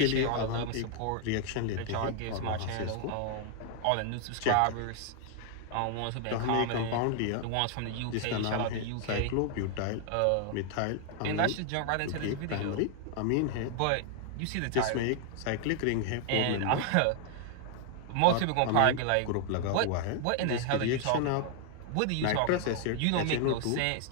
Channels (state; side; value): different; both; correlation 0.00